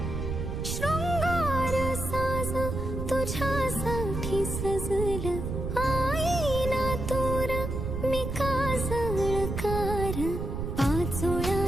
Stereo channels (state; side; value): noise; right; rumble, 4 dB below the sound